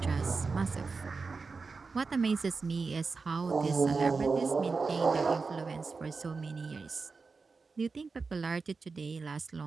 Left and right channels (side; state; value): left; quieter; 4.4 dB